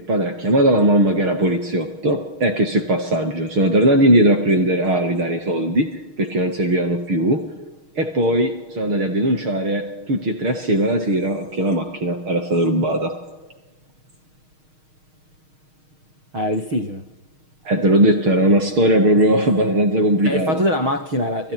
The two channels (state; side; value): late; left; 6.4 ms